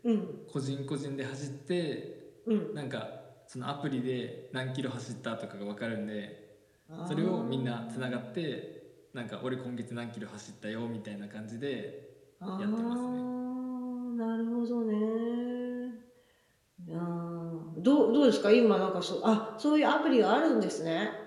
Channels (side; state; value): both; identical; correlation 1.00